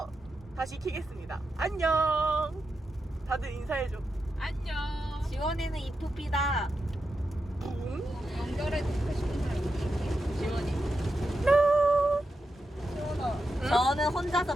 다시 키겠습니다. 안녕. 다들 인사해줘. 안녕. 지원이는 이쁘피다. 응? 저는 혼자서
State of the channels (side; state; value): both; normal; correlation 0.88